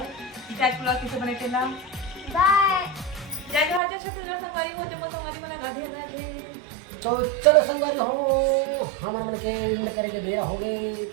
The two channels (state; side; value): drops out; left; at 3.8 s